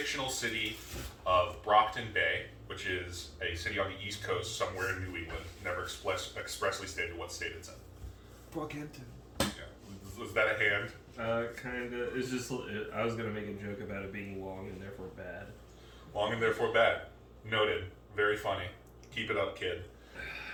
city of Brockton Bay, which is a city on the East Coast, somewhere in New England. Never expressly stated what state it's in. Brockhampton. Yeah. Was that a hand? Kinda. It's just. I was gonna make a joke about it being long and therefore bad. Long and therefore bad. Noted. Very funny. Keep it up, kid.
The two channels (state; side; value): identical; both; correlation 1.00